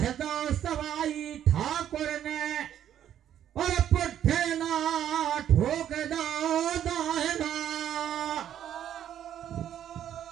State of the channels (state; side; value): quieter; left; 10.5 dB